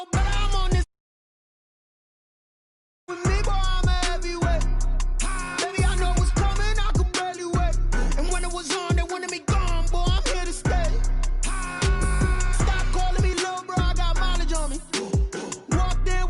better, I'm on this with me, boy, I'm a heavyweight. Baby, I know what's coming, I could barely wait. And when it was on, they wanted me gone, boy, I'm here to stay. Stop calling me little bro, I got mileage on me. Walked in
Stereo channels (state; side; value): identical; both; correlation 1.00